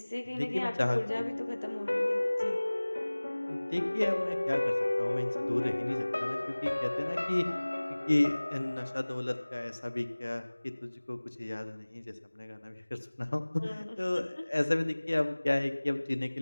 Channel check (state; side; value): inverted; both; correlation -1.00